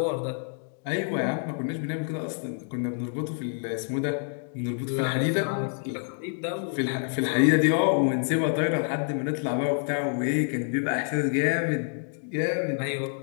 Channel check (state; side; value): silent; right; 58 dB below the other